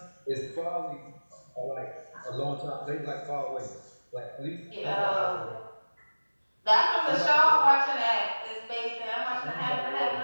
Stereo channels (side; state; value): both; inverted; correlation -1.00